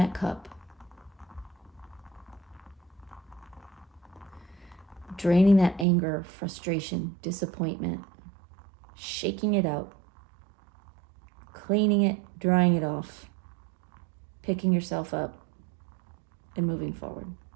cup. Draining that anger, frustration, disappointment, shaking it out, cleaning it, drying it off, picking yourself up, and moving forward.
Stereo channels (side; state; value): left; drops out; at 5.9 s